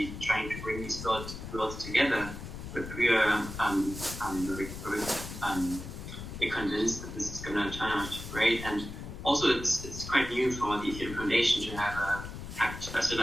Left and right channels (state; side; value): noise; left; rumble, 9 dB below the sound